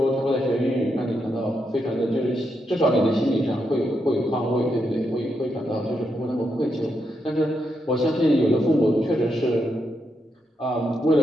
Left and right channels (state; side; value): normal; both; correlation 0.82